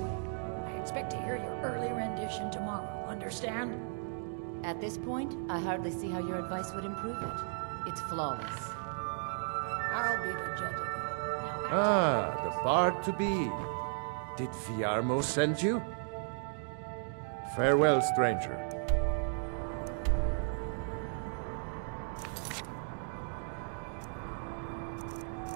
expect to hear your early rendition tomorrow, understand? At this point, I hardly see how your advice would improve it. It's flawless. I'll be the judge of that. Now, Ah, the bard to be. Did Viarmo send you? Farewell, stranger.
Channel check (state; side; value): silent; left; 54 dB below the other